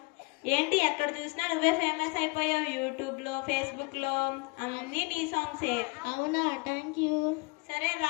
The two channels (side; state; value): right; quieter; 28.4 dB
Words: ఏంటి ఎక్కడ చూసినా నువ్వే ఫేమస్ అయిపోయావు. యూట్యూబ్ లో, ఫేస్బుక్ లో అన్ని నీ సాంగ్సే. అవునా, థ్యాంక్ యూ. సరే